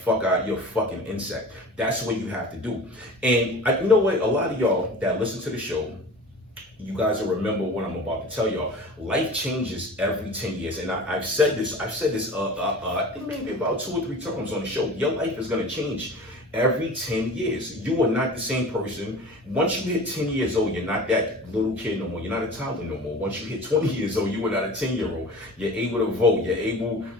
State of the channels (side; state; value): both; normal; correlation 0.38